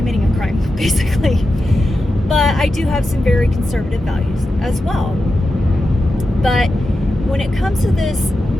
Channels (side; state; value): both; normal; correlation 0.90